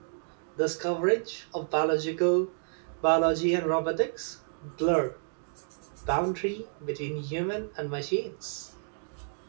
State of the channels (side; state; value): left; silent; digital silence